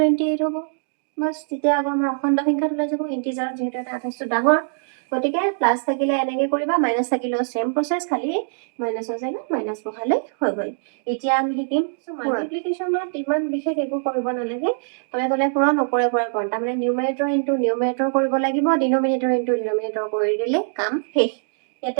হ'ব বাস তেতিয়া আকৌ আমাৰ অখণ্ড সংখ্যাটো লৈ যাব ইন্টিজাৰ যেহেতু এটা আঠাইছটো ডাঙৰ গতিকে প্লাস থাকিলে এনেকে কৰিবা মাইনাস থাকিলেও সেম প্ৰসেস খালি মাইনাসৰ জায়গাত মাইনাস বহালে হৈ গল এতিয়া আমি শিকিম মাল্টিপ্লিকেশনত ইমান বিশেষ একো কৰিব নালাগে তলে তলে পূৰণ ওপৰে পৰে পূৰণ তাৰ মানে নিউমাৰেটৰ ইনটু নিউমাৰেটৰ কৰিব লাগিব ডিনোমিনেটৰ ইনটু ডিনোমিনেটৰ কৰি দিলে কাম শেষ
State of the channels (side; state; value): left; silent; digital silence